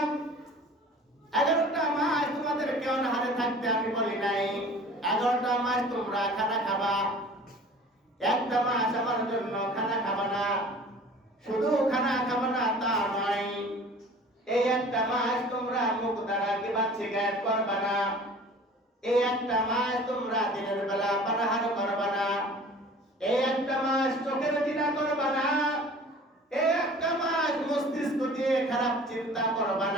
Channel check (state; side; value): normal; both; correlation 0.45